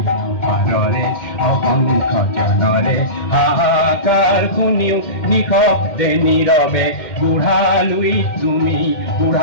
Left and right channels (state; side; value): late; right; 2.1 ms